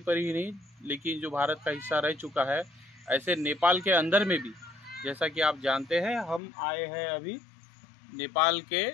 ही नहीं लेकिन जो भारत का हिस्सा रह चुका है, ऐसे नेपाल के अंदर में भी। जैसा कि आप जानते हैं, हम आए हैं अभी नेपाल के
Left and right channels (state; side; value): drops out; right; at 6.4 s